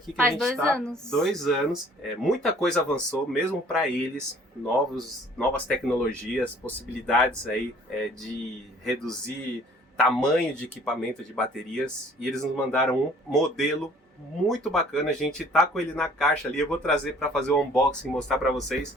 que Faz a gente está, 2 anos. 2 anos, muita coisa avançou, mesmo para eles, novas tecnologias, possibilidades aí de reduzir tamanho de equipamento de baterias, e eles nos mandaram um modelo muito bacana. A gente tá com ele na caixa ali, eu vou trazer para fazer o unboxing, mostrar para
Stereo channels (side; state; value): both; normal; correlation 0.54